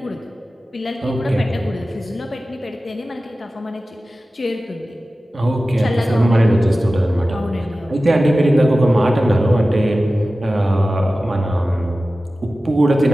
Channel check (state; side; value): normal; both; correlation 0.95